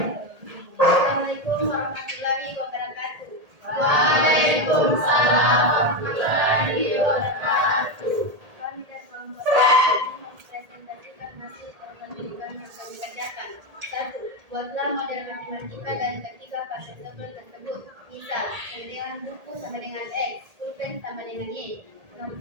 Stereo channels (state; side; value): late; left; 1.8 ms